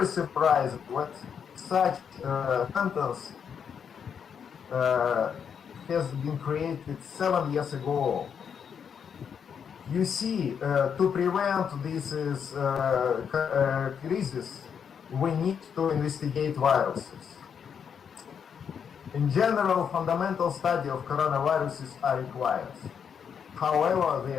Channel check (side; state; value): right; quieter; 7.3 dB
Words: surprising what such sentence has been created 7 years ago. You see, to prevent this crisis, we need to investigate viruses. In general, fundamental study of coronaviruses are required. However, they